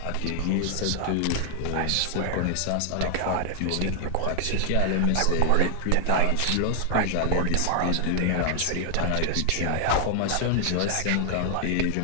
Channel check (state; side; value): different; both; correlation 0.00